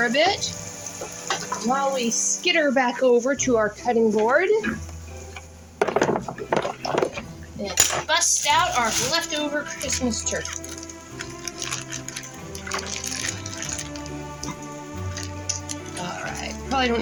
a bit while we skitter back over to our cutting board and bust out our leftover Christmas turkey. Alright, probably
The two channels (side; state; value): both; identical; correlation 1.00